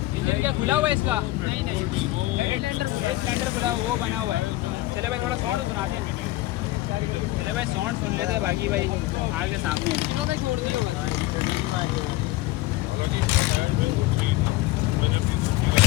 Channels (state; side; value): quieter; right; 18.0 dB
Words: इंजन क्या खुला हुआ है इसका? सिलेंडर खुला वो बना हुआ है। चले भाई थोड़ा साउंड सुनाते हैं। चले भाई साउंड सुन लेते हैं। बाकी भाई आगे सामने किलो में छोड़ दिया भाई।